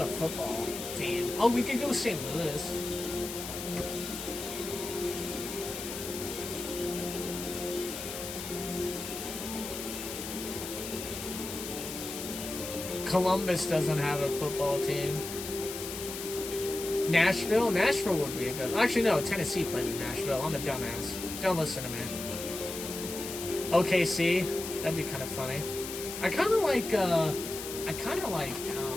football team? Oh, we could go St. Louis. Columbus doesn't have a football team. Nashville? Nashville would be a good... Actually, no. Tennessee plays in Nashville. I'm a dumbass. Don't listen to me. OKC? That'd be kind of funny. I kind of like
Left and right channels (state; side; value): noise; left; hiss, 7 dB below the sound